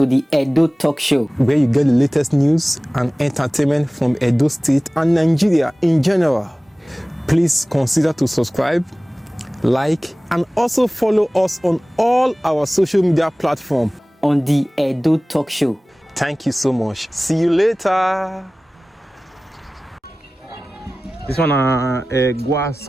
the Edo Talk Show, where you get the latest news and entertainment from Edo State and Nigeria in general. Please consider to subscribe, like, and also follow us on all our social media platforms. on the Edo Talk Show. Thank you so much. See you later. This one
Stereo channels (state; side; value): normal; both; correlation 0.98